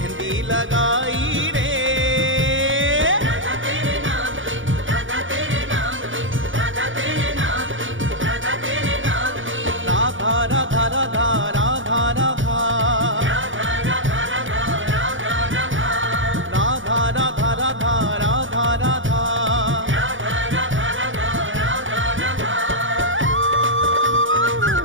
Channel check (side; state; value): left; late; 0.57 ms